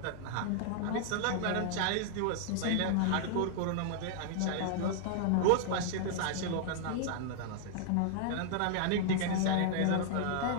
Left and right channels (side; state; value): both; different; correlation 0.00